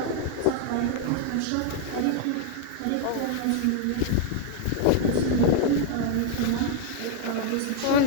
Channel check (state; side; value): different; both; correlation 0.00